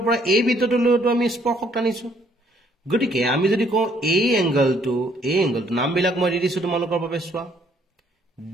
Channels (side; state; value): both; normal; correlation 0.65